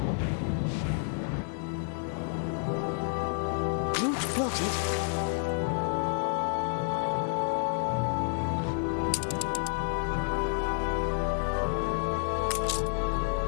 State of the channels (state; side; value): silent; right; digital silence